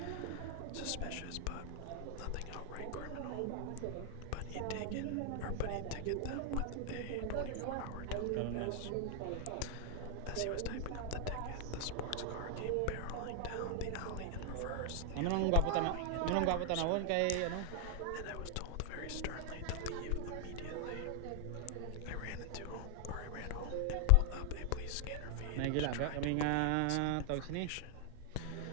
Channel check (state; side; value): different; both; correlation 0.00